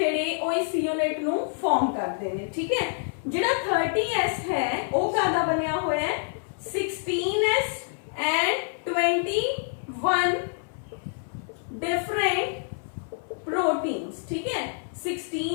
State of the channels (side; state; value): right; silent; 58 dB below the other